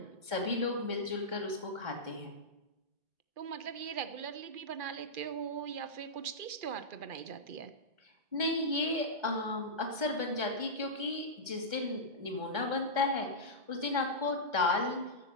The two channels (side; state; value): left; late; 1.3 ms